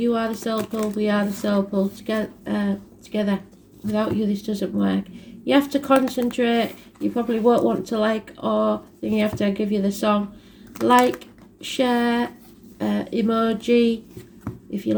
are the soul pole, we are the soul pole. Together. Without you, this doesn't work. You have to concentrate. You probably won't want to like, or then you have to give you the song. Like, share, emoji. If you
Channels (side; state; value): both; identical; correlation 1.00